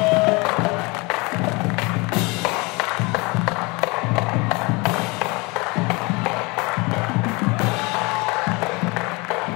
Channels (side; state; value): right; quieter; 26.8 dB